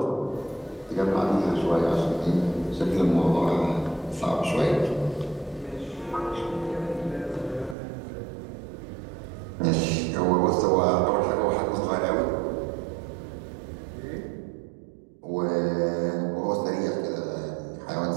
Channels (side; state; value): left; drops out; at 7.8 s